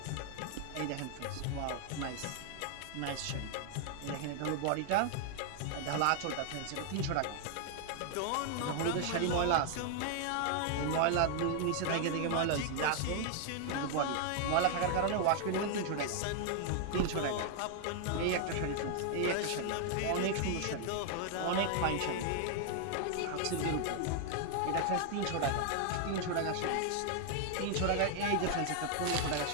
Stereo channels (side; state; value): both; different; correlation 0.00